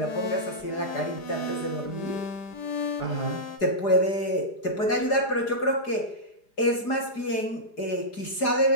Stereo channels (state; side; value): late; right; 4.9 ms